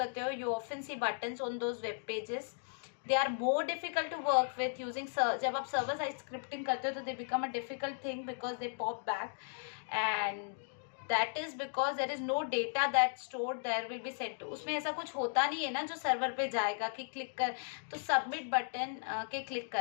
हो, you often see buttons on those web pages. They are more difficult to work with using. जब आप सर्वर साइड स्क्रिप्टिंग करते हो तो they become a difficult thing because they pop back, and that is because there is no data that stored there will be sent to. उसमें ऐसा कुछ होता नहीं है ना जो सर्वर पे जाएगा कि क्लिक कर, तो सबमिट बटन के क्लिक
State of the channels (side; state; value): right; silent; digital silence